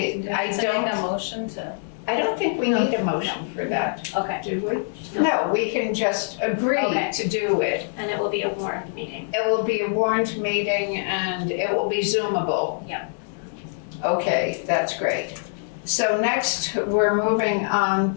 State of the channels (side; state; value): right; silent; digital silence